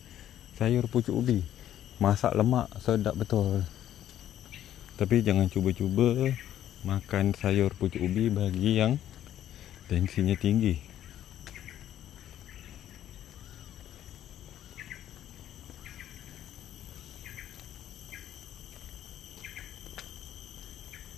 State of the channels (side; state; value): right; quieter; 11.5 dB